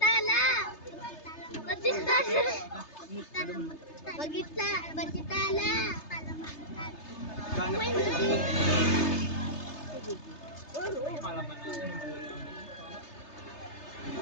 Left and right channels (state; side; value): late; right; 3.3 ms